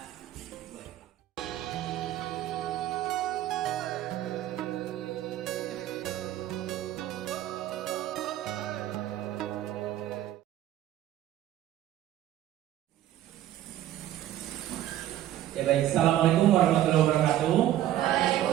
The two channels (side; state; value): left; quieter; 12.9 dB